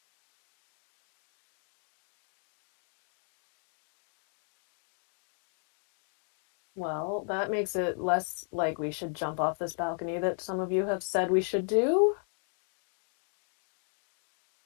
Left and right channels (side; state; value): right; silent; 54 dB below the other